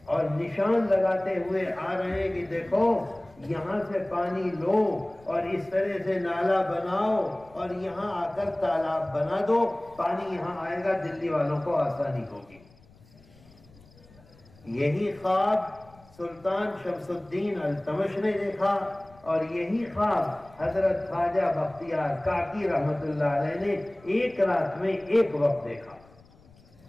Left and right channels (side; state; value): left; noise; rumble, 26 dB below the sound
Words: اور نشان لگاتے ہوئے آ رہے ہیں کہ دیکھو یہاں سے پانی لو اور اس طرح سے نالا بناؤ اور یہاں آ کر تالاب بنا دو، پانی یہاں آئے گا، دلی والوں کو آسانی ہوگی۔ یہی خواب سلطان شمس الدین التمش نے دیکھا، اور یہی خواب حضرت خواجہ بختیار کاکی رحمت اللہ علیہ نے ایک رات میں ایک وقت دیکھا۔